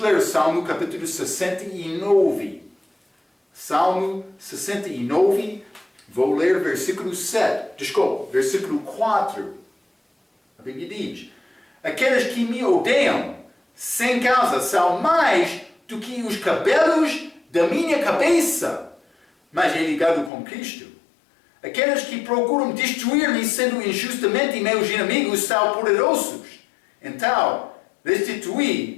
Salmo capítulo 69. Salmo 69, vou ler versículo 4. A Bíblia diz: aqueles que me odeiam sem causa são mais do que os cabelos da minha cabeça. Mas é ligado com Cristo. Aqueles que procuram destruir-me sendo injustamente meus inimigos são poderosos. Então,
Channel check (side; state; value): right; drops out; at 20.3 s